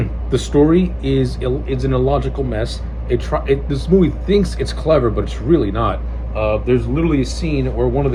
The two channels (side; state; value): both; identical; correlation 1.00